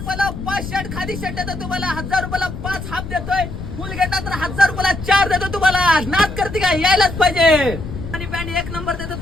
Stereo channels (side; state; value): left; noise; rumble, 8 dB below the sound